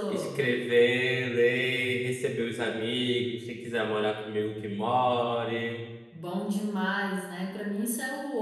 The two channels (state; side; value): identical; both; correlation 1.00